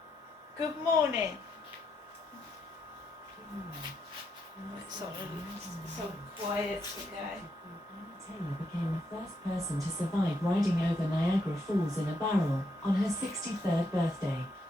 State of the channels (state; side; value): normal; both; correlation 0.79